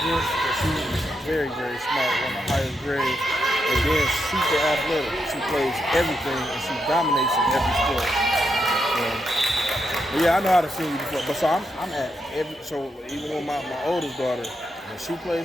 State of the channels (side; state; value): both; normal; correlation 0.83